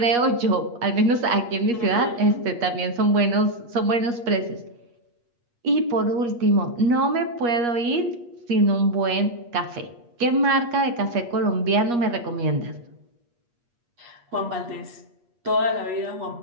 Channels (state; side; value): late; left; 8.4 ms